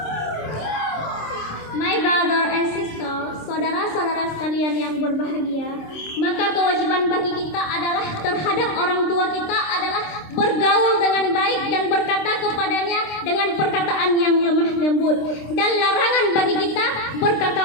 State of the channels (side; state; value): right; late; 26 ms